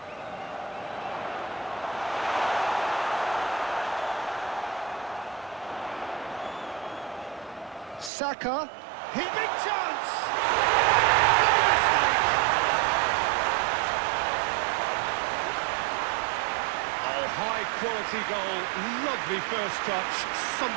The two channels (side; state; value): left; drops out; at 8.1 s